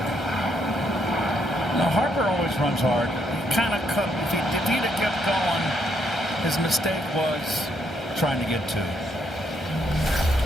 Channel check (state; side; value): normal; both; correlation 0.74